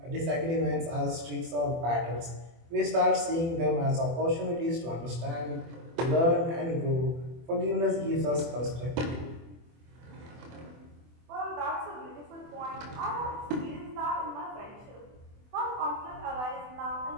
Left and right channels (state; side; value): late; left; 24 ms